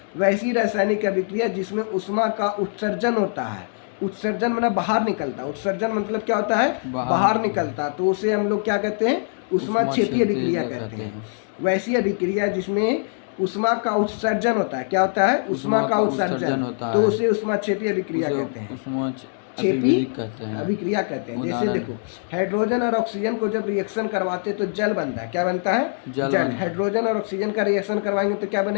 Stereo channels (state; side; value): silent; right; digital silence